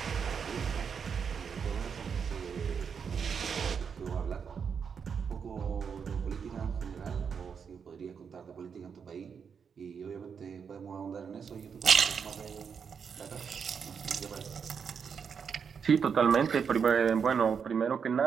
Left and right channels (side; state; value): left; quieter; 6.6 dB